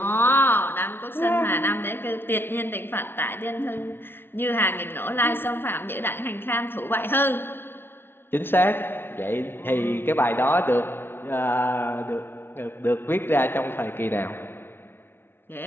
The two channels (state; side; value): late; right; 0.11 ms